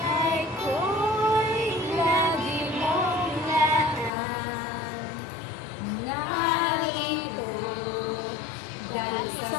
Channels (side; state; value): right; drops out; at 4.1 s